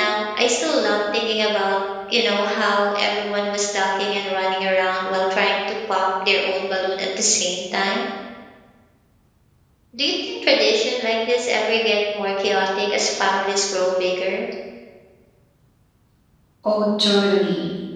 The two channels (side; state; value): both; identical; correlation 1.00